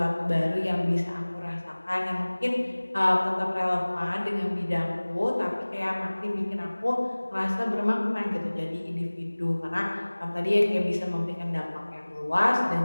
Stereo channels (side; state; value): both; inverted; correlation -1.00